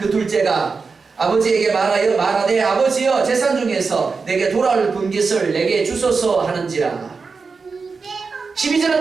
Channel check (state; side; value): quieter; left; 4.7 dB